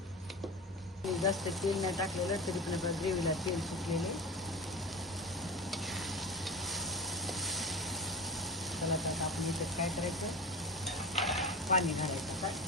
जास्त तेल नाही टाकलेलं तरी पण आपल्या ग्रेव्हीला तेल सुटलेले. चला आता आपण इथं काय करायचं, पाणी घालायचं.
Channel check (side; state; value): both; normal; correlation 0.30